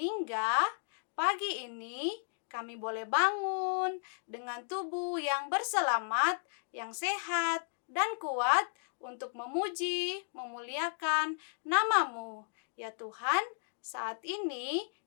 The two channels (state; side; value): silent; right; digital silence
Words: pagi ini kami boleh bangun dengan tubuh yang berselamat, yang sehat, dan kuat untuk memuji, memuliakan nama-Mu. Ya Tuhan, saat ini